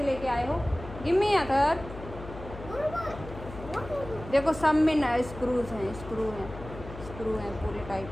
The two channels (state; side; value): noise; left; hum, 13 dB below the sound